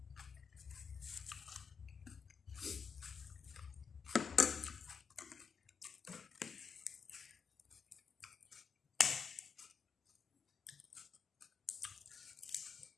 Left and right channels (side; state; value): right; quieter; 6.1 dB